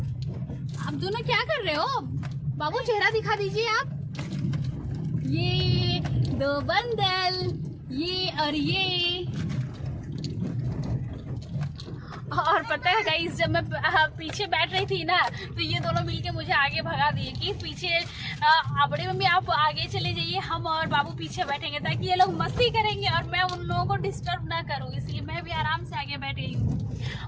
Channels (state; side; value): identical; both; correlation 1.00